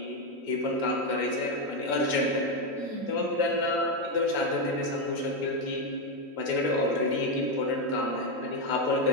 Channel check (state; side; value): late; left; 3.5 ms